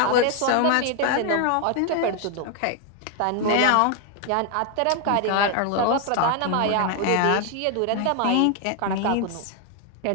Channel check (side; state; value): both; different; correlation 0.01